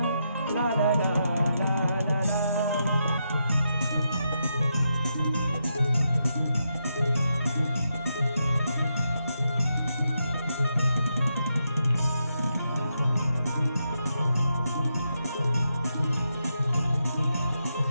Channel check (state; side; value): inverted; both; correlation -0.83